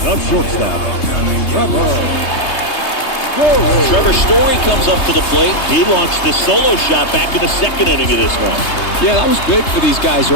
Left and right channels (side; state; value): right; late; 3.3 ms